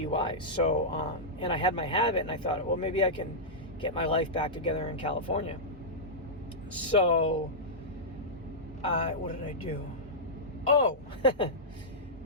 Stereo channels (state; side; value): normal; both; correlation -0.12